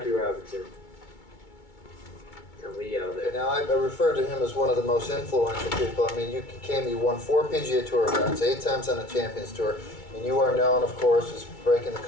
Robinson. And Lee Elder. Now, I refer to him as one of the most influential people. I mean, you won 4 PGA Tour events, 8 times on the Champions Tour, and you are known, of course, as breaking the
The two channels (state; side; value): late; right; 2.2 ms